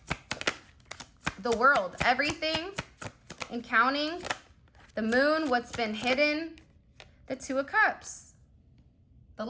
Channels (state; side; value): identical; both; correlation 1.00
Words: The world, everything and counting. The moon, what's been hidden. The 2 of Cups. The